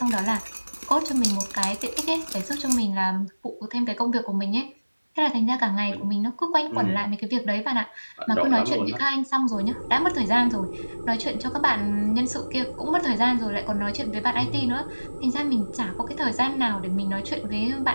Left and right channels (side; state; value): both; inverted; correlation -1.00